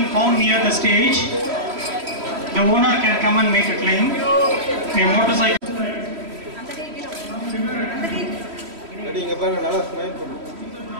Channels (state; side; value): late; left; 3.1 ms